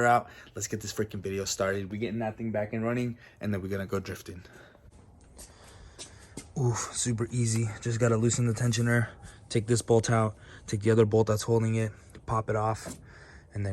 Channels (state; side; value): identical; both; correlation 1.00